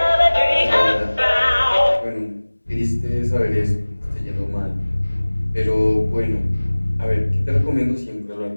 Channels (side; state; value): both; inverted; correlation -1.00